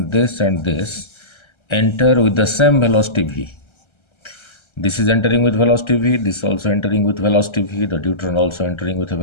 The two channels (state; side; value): late; right; 1.3 ms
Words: this, enter with the same velocity v. This is entering with velocity v, this also entering with velocity v, the deuteron also entering with a